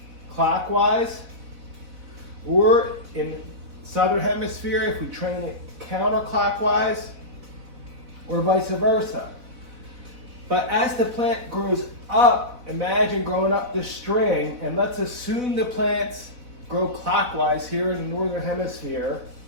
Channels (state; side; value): late; left; 4.0 ms